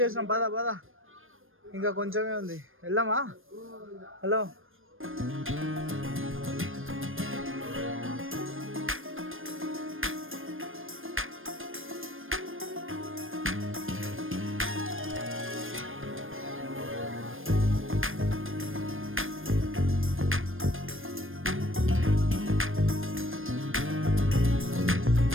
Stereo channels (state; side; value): late; left; 0.59 ms